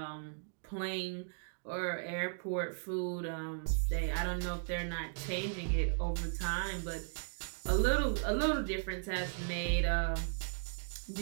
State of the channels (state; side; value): silent; left; digital silence